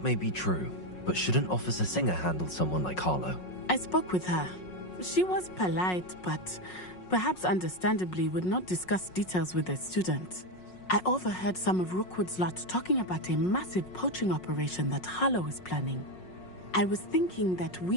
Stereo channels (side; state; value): right; late; 5.5 ms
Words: may be true, but shouldn't Officer Singer handle someone like Harlow? I spoke with her. She was polite, but perhaps understandably would not discuss details with a student. I overheard some of Rookwood's lot talking about a massive poaching operation that Harlow is planning. I was thinking that